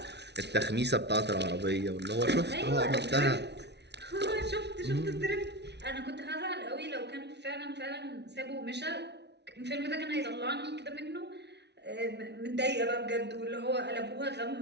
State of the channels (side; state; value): left; late; 0.50 ms